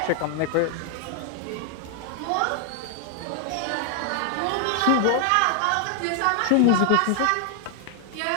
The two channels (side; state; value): both; different; correlation 0.00